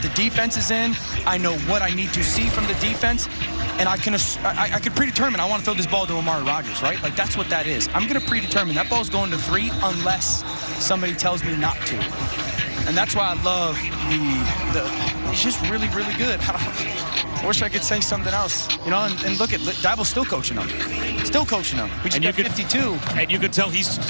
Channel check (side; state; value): both; inverted; correlation -1.00